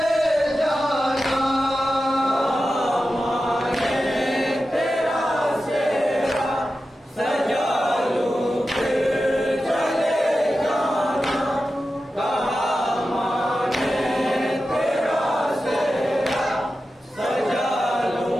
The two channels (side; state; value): both; normal; correlation 0.92